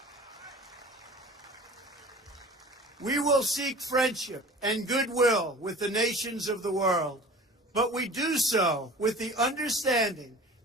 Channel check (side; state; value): both; normal; correlation 0.42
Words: We will seek friendship and goodwill with the nations of the world, but we do so with the understanding